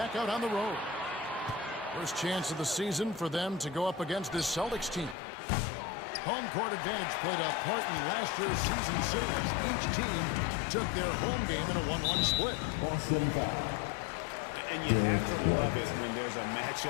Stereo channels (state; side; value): drops out; right; at 5.2 s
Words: out on the road. First chance of the season for them to go up against this Celtics team. Home court advantage played a part in last year's season series. Each team took their home game in a 1-1 split. Boston foul. And you have to love it when there's a